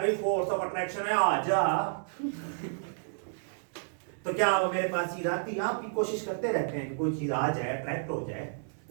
फोर्स ऑफ अट्रैक्शन है आ जा, तो क्या वो मेरे पास चीज आती? आप भी कोशिश करते रहते हैं कि कोई चीज आ जाए, अट्रैक्ट हो जाए,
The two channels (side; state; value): left; silent; digital silence